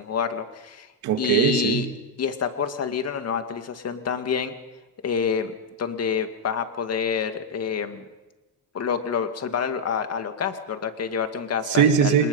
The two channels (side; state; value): both; normal; correlation -0.03